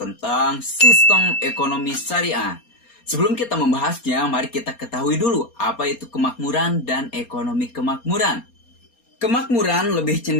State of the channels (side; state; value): right; late; 4.3 ms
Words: sistem ekonomi syariah. Sebelum kita membahasnya, mari kita ketahui dulu apa itu kemakmuran dan ekonomi kemakmuran. Kemakmuran lebih